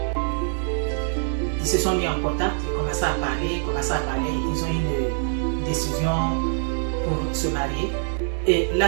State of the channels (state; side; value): silent; left; digital silence